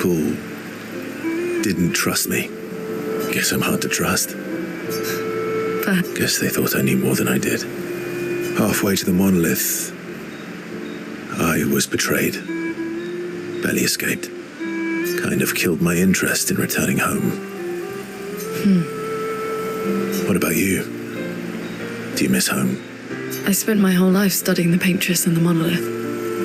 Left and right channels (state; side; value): identical; both; correlation 1.00